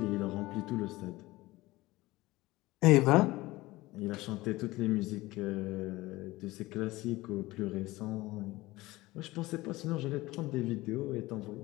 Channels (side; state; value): right; quieter; 19.3 dB